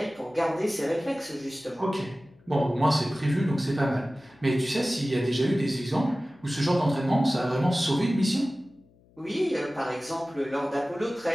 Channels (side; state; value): left; noise; hum, 30 dB below the sound